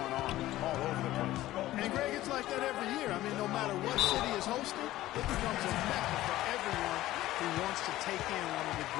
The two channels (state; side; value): quieter; right; 15.6 dB